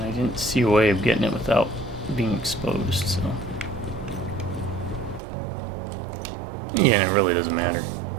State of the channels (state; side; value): drops out; left; at 5.2 s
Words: I didn't see a way of getting it without being exposed, so... Yeah, it really doesn't matter